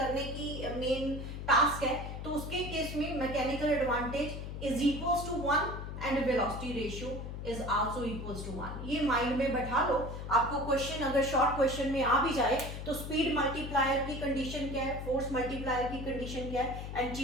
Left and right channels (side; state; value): left; noise; hum, 7 dB below the sound